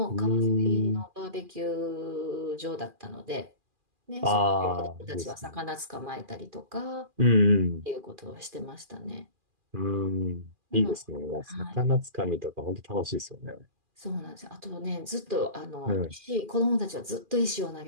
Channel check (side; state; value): left; late; 2.4 ms